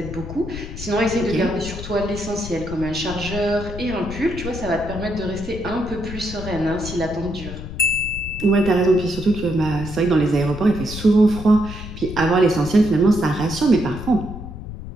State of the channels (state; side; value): noise; left; rumble, 10 dB below the sound